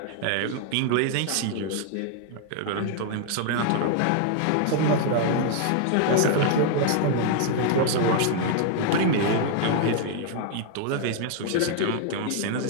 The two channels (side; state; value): both; different; correlation 0.00